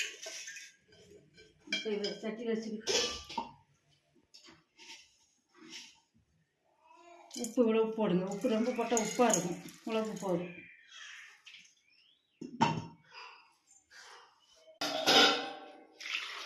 இப்போ இதை சட்டியில் வச்சுக்கிட்டு உப்பு இவ்வளவு போடுங்க. உப்பு ரொம்ப போட்டால் உப்பாக இருக்கும். இவ்வளவு போதும்.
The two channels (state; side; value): identical; both; correlation 1.00